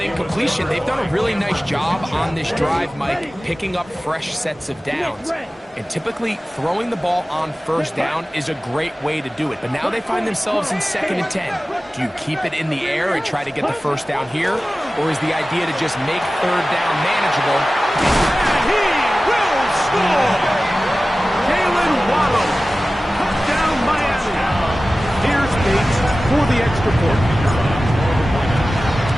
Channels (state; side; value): normal; both; correlation 0.96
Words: they've done a really nice job on this drive, Mike, picking up fresh sets of downs. And typically, throwing the ball on 1st down is a great way to do it. But now they find themselves in 2nd and 10. Do you keep it in the air and try to get the 1st down here? Or is the idea to just make 3rd down manageable? And he will score! Jalen Waddle. Touchdown, Miami. Here's Bates for the extra point.